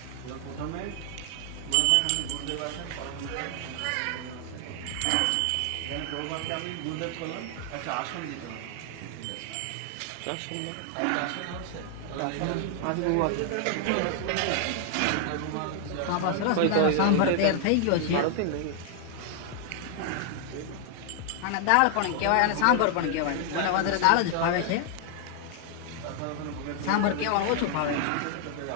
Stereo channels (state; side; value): different; both; correlation 0.00